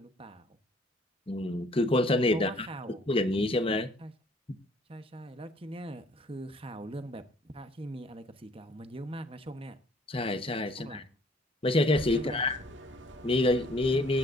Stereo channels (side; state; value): both; normal; correlation 0.59